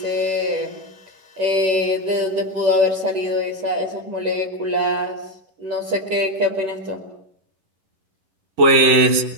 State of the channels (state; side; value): late; left; 11 ms